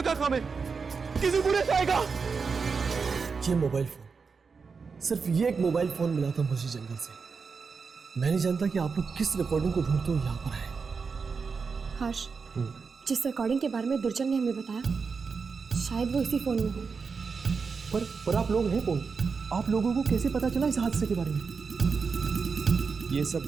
का काम है, किसी बुरे से आएगा। ये मोबाइल फोन, सिर्फ ये एक मोबाइल फोन मिला था मुझे जंगल से। मैं नहीं जानता कि आप लोग किस रिकॉर्डिंग को ढूंढते हो यहाँ पर आए। हर्ष, जिस रिकॉर्डिंग के बारे में दुर्जन ने हमें बताया, शायद वो इसी फोन में हो। पर आप लोग हैं कौन? आप लोगों को कैसे पता चला इस हादसे के बारे में? ये सब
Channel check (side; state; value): left; quieter; 5.2 dB